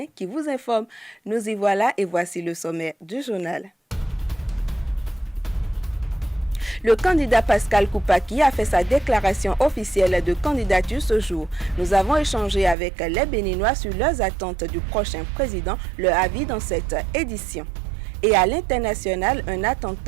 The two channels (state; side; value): drops out; left; at 12.8 s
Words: qui vous informe. Nous y voilà et voici le sommaire du journal. Le candidat Pascal Koupaki a fait sa déclaration officielle de candidature ce jour. Nous avons échangé avec les Béninois sur leurs attentes du prochain président, leur avis dans cette édition. Et à l'international, un